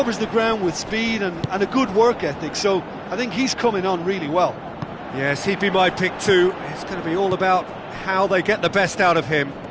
the ground with speed and a good work ethic, so I think he's coming on really well. Yes, he'd be my pick too. It's going to be all about how they get the best out of him.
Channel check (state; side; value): identical; both; correlation 1.00